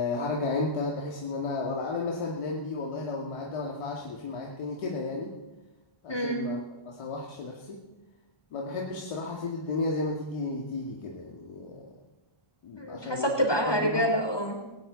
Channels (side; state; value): right; late; 1.2 ms